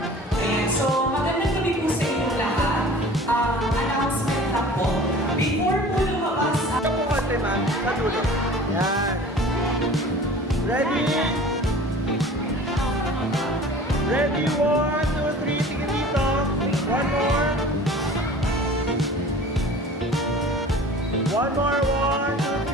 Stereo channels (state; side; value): normal; both; correlation 0.43